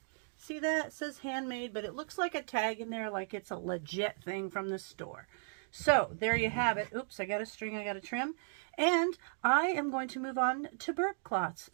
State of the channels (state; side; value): silent; left; 54 dB below the other